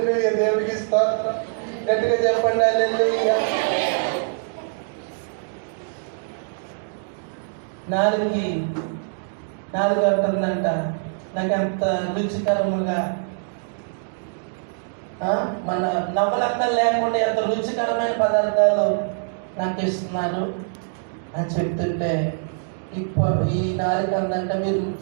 దేవుడికి స్తోత్రం. గట్టిగా చెప్పండి హల్లెలూయా. నాలుగు అంటుందంట, నాకు అంత రుచికరముగా మన నవ్వలక్కలు లేకుండా ఎంత రుచికరమైన పదార్థాలు నాకు ఇస్తున్నారు అని చెప్తుంటే, ఈ నాలుగు అందంట, మీరు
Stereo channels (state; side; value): silent; left; digital silence